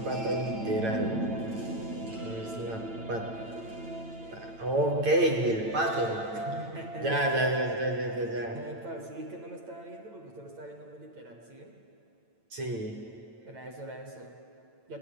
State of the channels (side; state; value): left; late; 8.9 ms